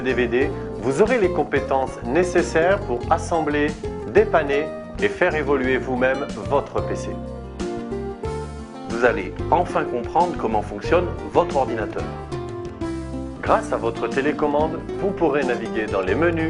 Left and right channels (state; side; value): identical; both; correlation 1.00